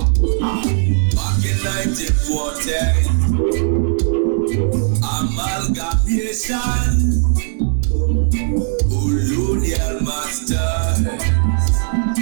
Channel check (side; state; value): left; silent; 68 dB below the other